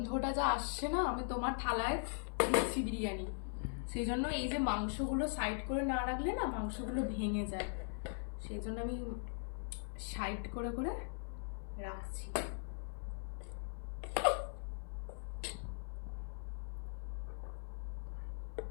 যা আসছে না, আমি তোমার থালায় দিচ্ছি বিরিয়ানি। সেই জন্য এই যে মাংসগুলো সাইড করে না রাখলে না মাংসগুলো ভেঙে যায়, সেই জন্য আমি সাইড করে করে রাখছি।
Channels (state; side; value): silent; right; 51 dB below the other